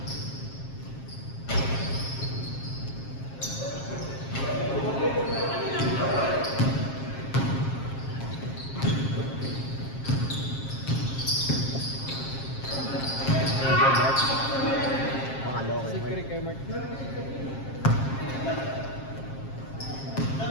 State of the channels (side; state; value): right; late; 7.5 ms